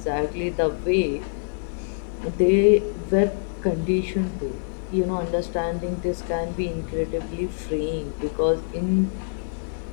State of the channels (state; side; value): silent; right; 62 dB below the other